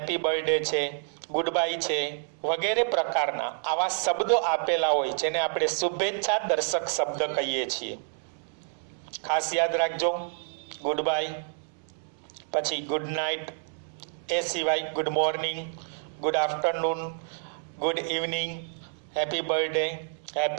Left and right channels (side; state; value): left; silent; digital silence